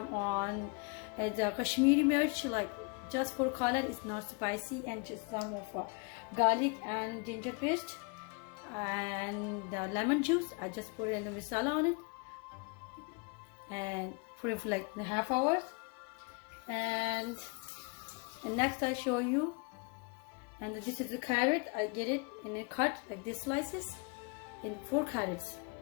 on the Kashmiri mirch, like just for color. It's not spicy, and just some of garlic and ginger paste and the lemon juice. I just put in the masala on it and put it for like a half hours, and next I show you. And this is the carrot. I get it in a cut like this slices in 4 carrots.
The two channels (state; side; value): quieter; right; 32.6 dB